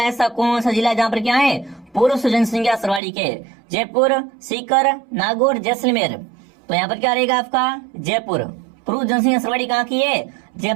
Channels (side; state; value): left; drops out; at 3.0 s